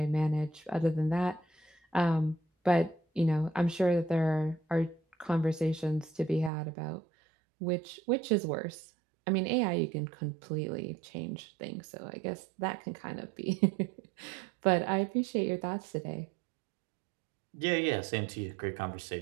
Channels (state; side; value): drops out; left; at 6.5 s